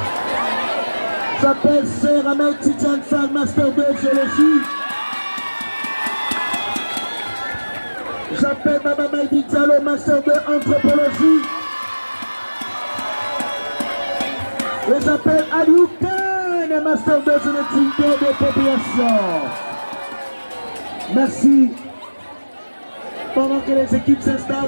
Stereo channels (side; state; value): both; inverted; correlation -1.00